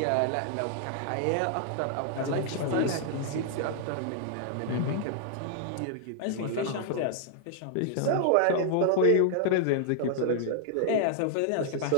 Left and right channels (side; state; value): both; different; correlation -0.01